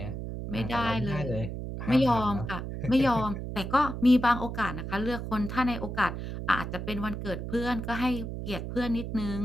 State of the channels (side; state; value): right; noise; hum, 6 dB below the sound